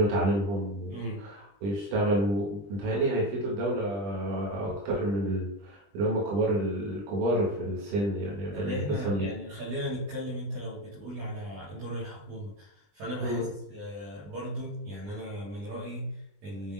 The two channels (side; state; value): left; late; 20 ms